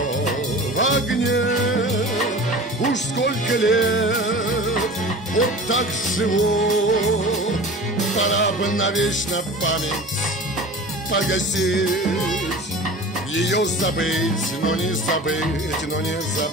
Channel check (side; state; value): both; normal; correlation 0.37